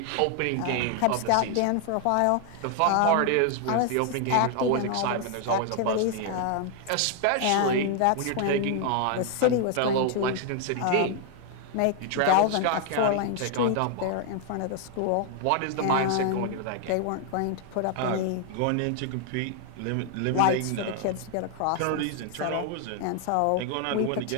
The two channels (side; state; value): both; different; correlation 0.00